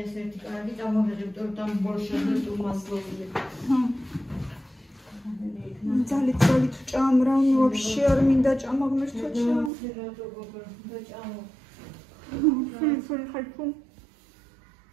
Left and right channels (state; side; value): drops out; left; at 9.7 s